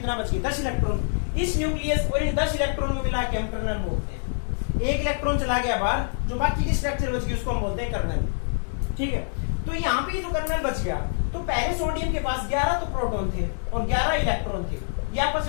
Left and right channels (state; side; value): silent; right; digital silence